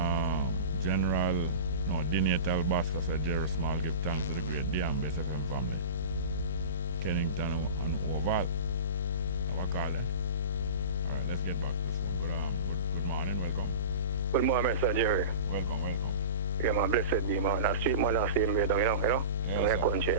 Dinatal Basca said Jerry Small give thanks to the great D and Bess FM family. Kennington and Oval. Have a call then. Alright, let's get back to this one. Good morning, welcome. Good morning, Mr. Jerry. Welcome. Yeah, man, blessed be, man. That street man, that's same way down, you know? Yes, country.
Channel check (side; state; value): both; inverted; correlation -0.34